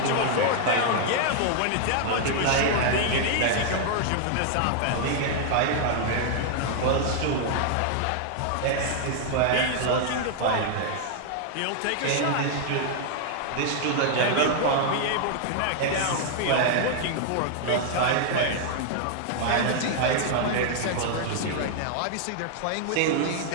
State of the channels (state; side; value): different; both; correlation 0.00